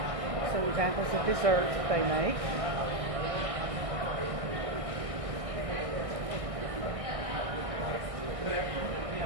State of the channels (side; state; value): left; late; 1.6 ms